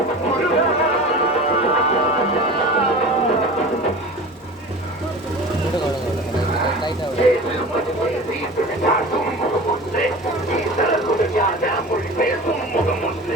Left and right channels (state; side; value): normal; both; correlation 0.36